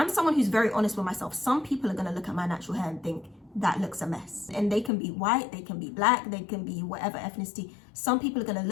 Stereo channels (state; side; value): drops out; right; at 4.9 s